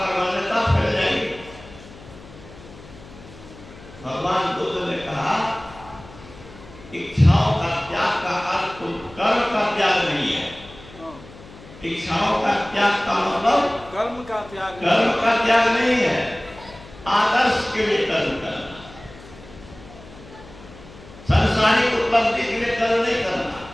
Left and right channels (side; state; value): left; noise; hum, 19 dB below the sound